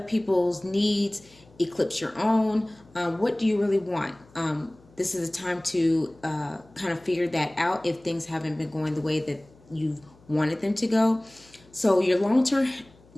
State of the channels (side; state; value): left; noise; hum, 27 dB below the sound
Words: needs eclipse your own. What do you really want? This is a time to kind of figure that out if things haven't been going the way that you've wanted them to go. So your